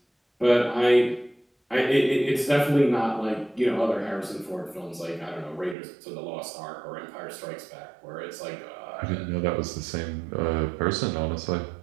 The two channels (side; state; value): left; drops out; at 5.8 s